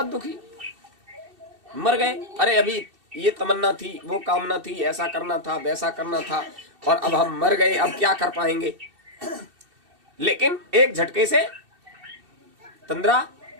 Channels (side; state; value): left; late; 2.6 ms